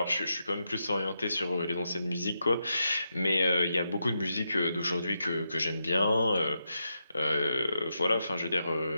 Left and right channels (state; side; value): inverted; both; correlation -0.85